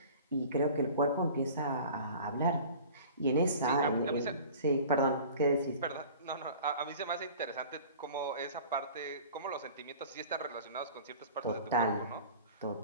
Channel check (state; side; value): inverted; both; correlation -0.42